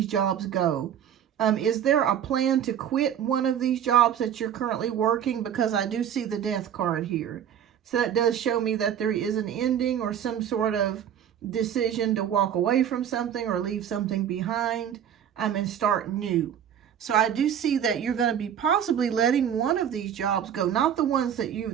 jobs go. Is there a plan to quit one of these jobs that you're currently working? Because I do see the Death card here. So that does show me that there is an ending or some sort of decision to walk away from something or leave something behind and start new. So I do see that you're going to be possibly letting one of these jobs go, not the ones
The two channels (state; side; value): quieter; left; 9.3 dB